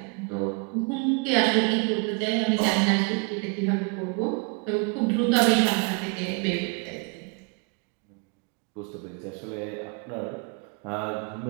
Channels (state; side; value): quieter; left; 33.5 dB